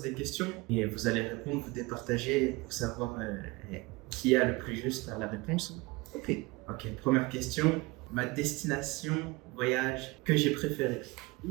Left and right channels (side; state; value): left; quieter; 23.9 dB